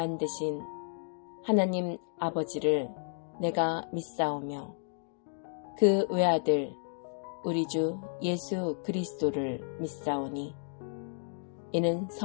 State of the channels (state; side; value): silent; right; digital silence